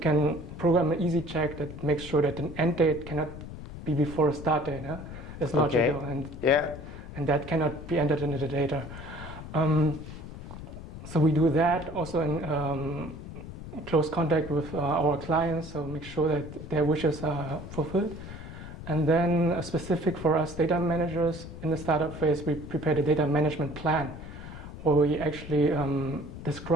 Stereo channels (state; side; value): noise; left; rumble, 12 dB below the sound